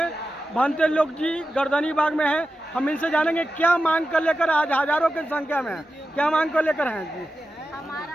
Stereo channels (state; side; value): normal; both; correlation 0.92